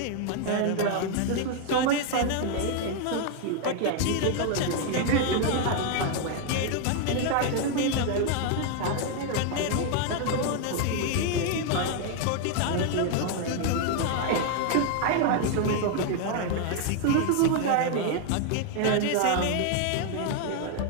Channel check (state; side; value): different; both; correlation 0.00